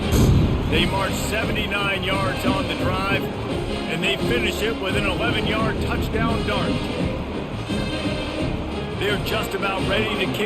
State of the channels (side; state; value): both; identical; correlation 1.00